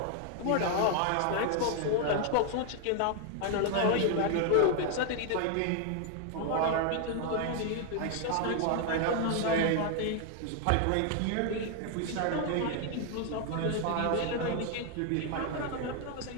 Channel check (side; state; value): both; different; correlation 0.00